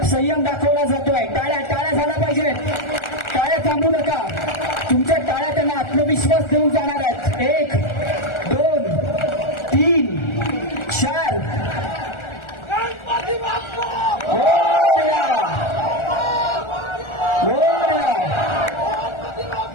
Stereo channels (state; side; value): late; right; 1.4 ms